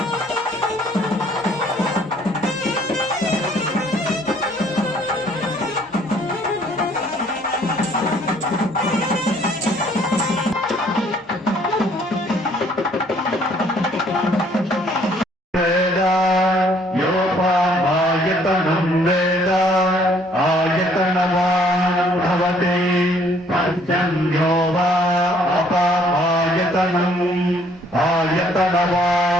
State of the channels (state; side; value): normal; both; correlation 0.62